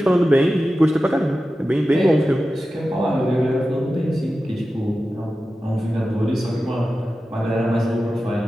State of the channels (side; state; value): both; normal; correlation 0.93